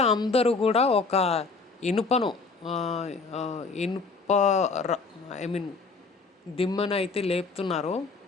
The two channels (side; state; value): right; quieter; 4.3 dB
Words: అందరూ కూడా ఒక ఇనుప దిమ్మను అయితే లేపుతున్నారు.